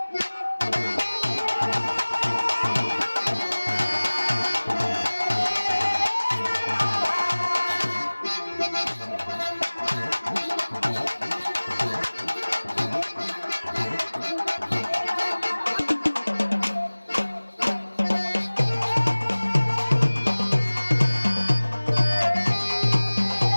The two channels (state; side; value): inverted; both; correlation -1.00